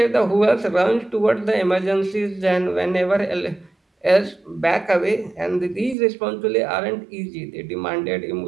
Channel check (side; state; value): left; drops out; at 6.0 s